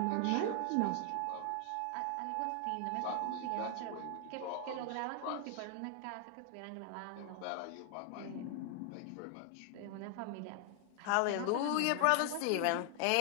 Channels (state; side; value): different; both; correlation 0.00